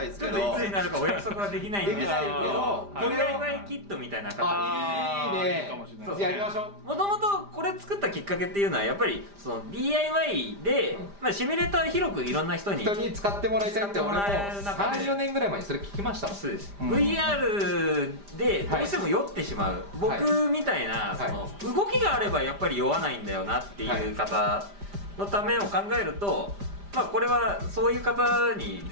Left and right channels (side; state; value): left; late; 5.0 ms